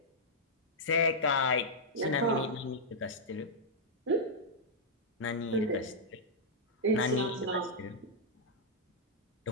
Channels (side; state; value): both; normal; correlation -0.07